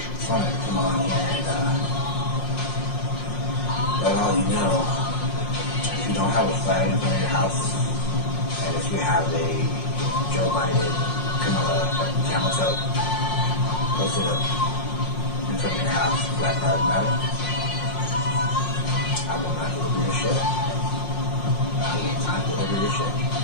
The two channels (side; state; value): right; late; 5.5 ms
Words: Fine, come on here and let all you know, if you don't have a flag in front of your house, and if you have a Joe Biden, Kamala, camel toe posted up in front of your house, Black Lives Matter, I will not deliver your shit. I will not deliver your shit.